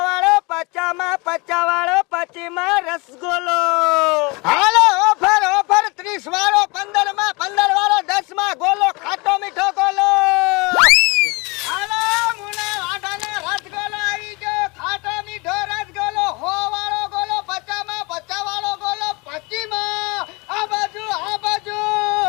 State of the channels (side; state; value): right; quieter; 27.2 dB